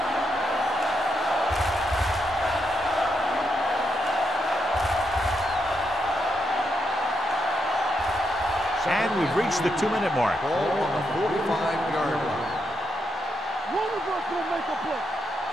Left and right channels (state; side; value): normal; both; correlation 0.81